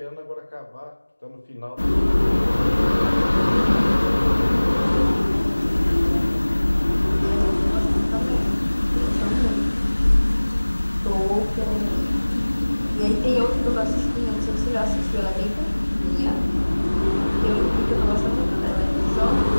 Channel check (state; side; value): inverted; both; correlation -1.00